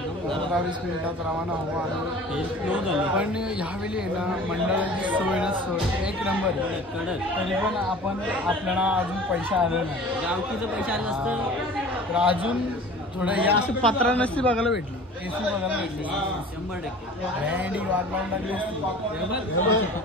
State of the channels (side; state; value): both; normal; correlation 0.43